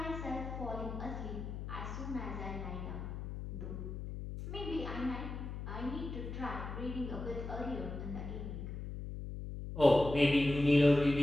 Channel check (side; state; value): left; noise; hum, 7 dB below the sound